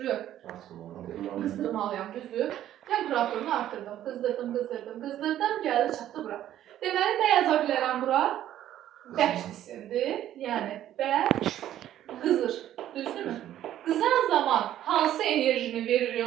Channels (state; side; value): quieter; left; 12.1 dB